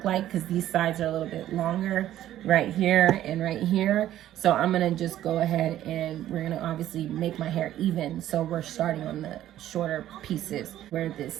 like, because these sides are a little bit longer right here and right here. So I'm gonna just go ahead, and we're gonna obviously make my hair even. So we're starting on the shorter pieces where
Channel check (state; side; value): quieter; left; 12.7 dB